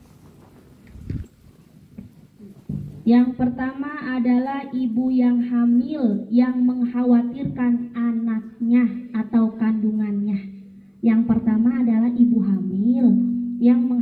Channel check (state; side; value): identical; both; correlation 1.00